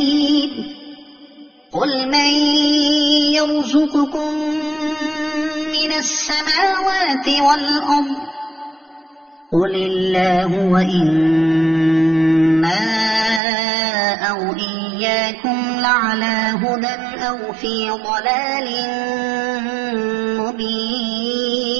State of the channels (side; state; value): left; drops out; at 13.4 s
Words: قل من يرزقكم من السماوات والأرض قل الله وإنا أو إياكم لعلى هدى أو في ضلال